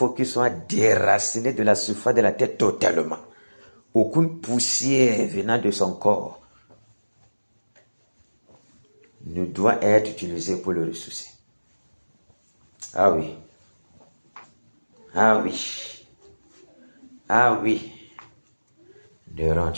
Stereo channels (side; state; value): both; inverted; correlation -1.00